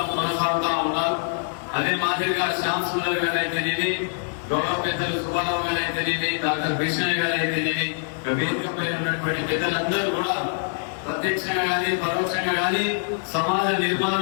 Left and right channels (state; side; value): silent; right; 62 dB below the other